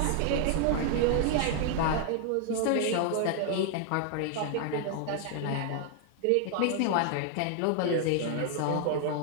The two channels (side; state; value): both; different; correlation 0.00